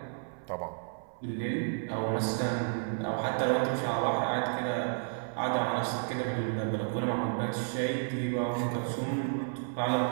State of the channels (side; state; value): left; silent; 57 dB below the other